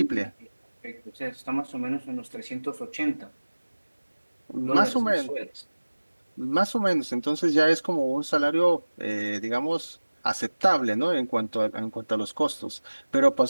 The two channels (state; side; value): inverted; both; correlation -1.00